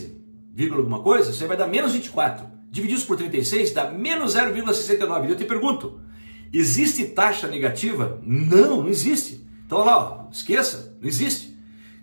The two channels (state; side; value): inverted; both; correlation -1.00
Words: vírgula alguma coisa, você vai dar menos 24. Divididos por 36 dá menos 0,69. E eu te pergunto, existe taxa negativa? Não, não existe. Então olha lá, ó, esqueça, não existe.